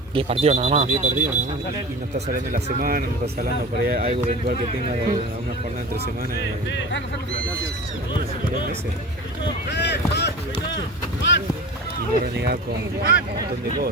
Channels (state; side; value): normal; both; correlation 0.34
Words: 10 partidos nada más. 10 partidos nada más. Y no estás hablando de la semana, no estás hablando por ahí algo eventual que tenga una jornada entre semanas. 2 meses. Y no renegar con un montón de